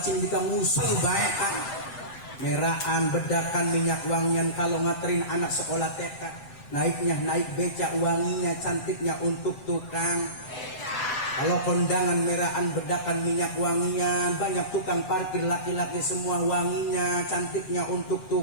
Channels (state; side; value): late; right; 7.9 ms